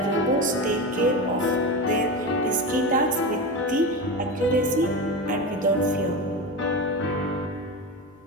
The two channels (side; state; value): both; normal; correlation 0.22